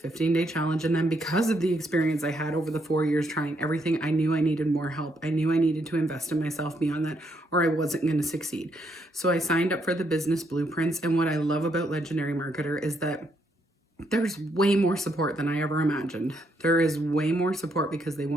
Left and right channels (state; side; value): normal; both; correlation 0.75